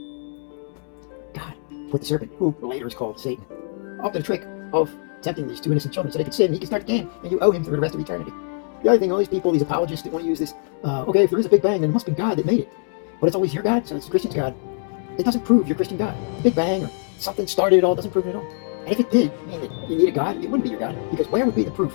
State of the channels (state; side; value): silent; right; 62 dB below the other